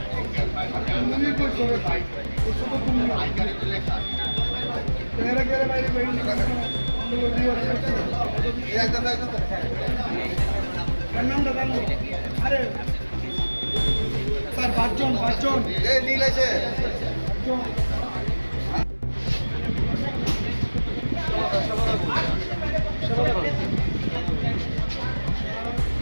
তুমি কই করে ভাই ও সব তুমি ভাই করে লেখা তেরা গেলে বাইরে বাইরে একদম নামটা জানো আরে স্যার পাঁচজন এই নীল আছে cool.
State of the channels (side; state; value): both; inverted; correlation -1.00